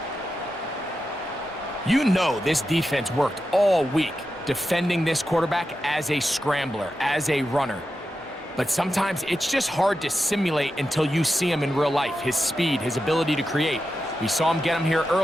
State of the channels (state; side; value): normal; both; correlation 0.90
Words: You know this defense worked all week defending this quarterback as a scrambler, as a runner. But sometimes it's just hard to simulate until you see him in real life, his speed, his ability to create. We saw him get him here